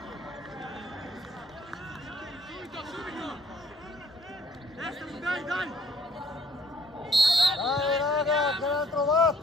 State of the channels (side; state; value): both; normal; correlation 0.60